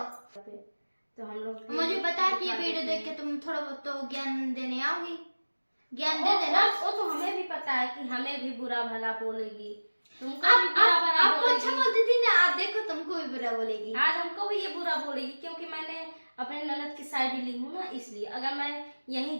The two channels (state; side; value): inverted; both; correlation -1.00